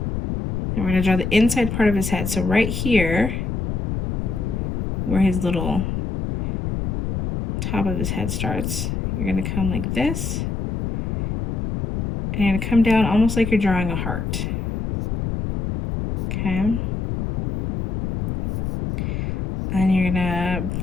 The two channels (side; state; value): left; noise; rumble, 2 dB below the sound